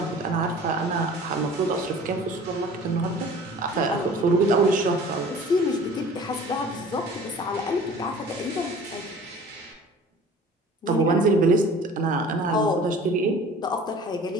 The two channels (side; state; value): both; normal; correlation 0.46